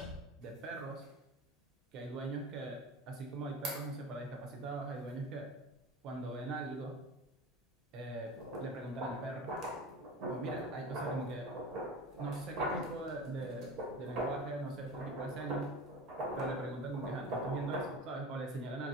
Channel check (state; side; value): normal; both; correlation 0.33